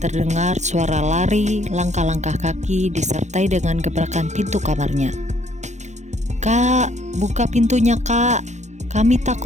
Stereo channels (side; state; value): left; late; 0.34 ms